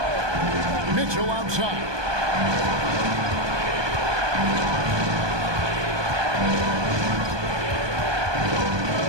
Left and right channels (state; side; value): late; left; 1.2 ms